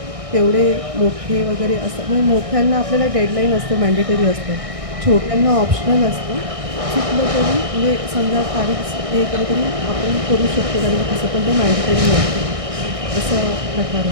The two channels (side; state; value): left; late; 1.6 ms